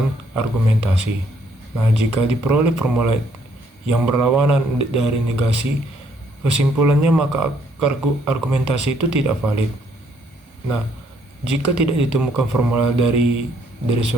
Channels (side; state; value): both; normal; correlation 0.68